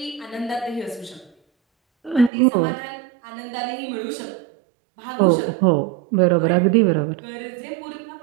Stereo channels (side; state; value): left; drops out; at 2.3 s